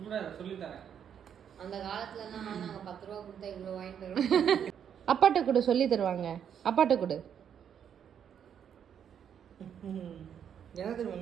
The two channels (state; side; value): quieter; left; 8.5 dB